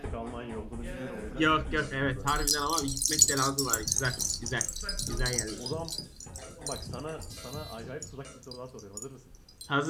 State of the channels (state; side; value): identical; both; correlation 1.00